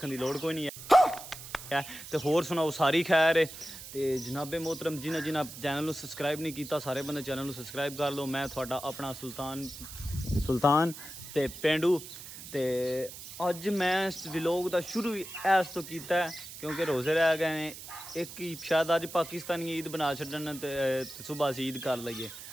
दी लोड़ कोई नहीं है। तो होर सुनाओ सारी खैर है। तो जनाबे मोहतरम जिन्हें जिन्हें चैनल को सबसक्राइब नहीं किया, सारे बंदे चैनल को सबसक्राइब कर लो। मैं थोड़ा अपना सुल्तान ते पेंडू। तो अज मैं इस व्लॉग का शुरू इस तो किया क्योंकि रोज़े रह गए हैं। एक ही शायद अज पाकिस्तानी ईद बना छड्डन तो सुबह असीं ईद कर लईए,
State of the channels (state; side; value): noise; right; hiss, 13 dB below the sound